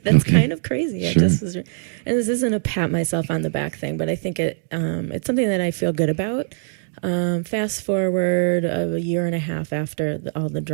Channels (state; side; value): silent; left; digital silence